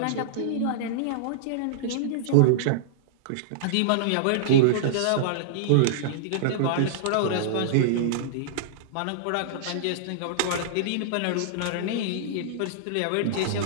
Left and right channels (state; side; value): different; both; correlation -0.02